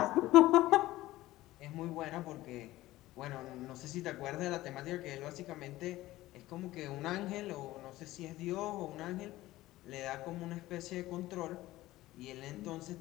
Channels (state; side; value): quieter; right; 16.8 dB